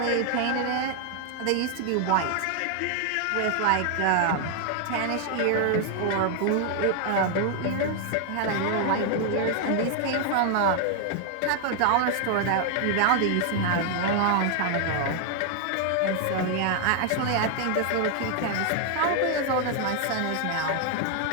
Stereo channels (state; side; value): different; both; correlation 0.00